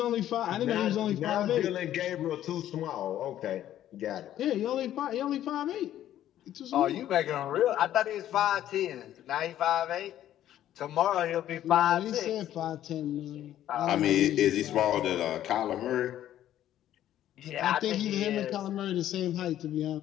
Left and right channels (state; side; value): quieter; right; 12.1 dB